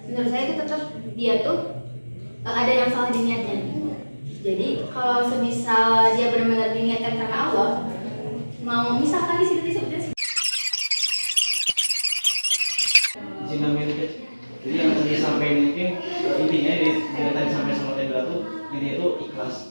menurut saya itu tetap dia tuh ada yang salah di niatnya. Jadi kalau semisal dia benar-benar diniatkan karena Allah, mau misalkan di situ disebutnya Cina milik. Jadi yang tadi sampaikan mungkin intinya dari tadi sampai sama tadi tuh intinya itu ikhlas.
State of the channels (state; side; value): inverted; both; correlation -1.00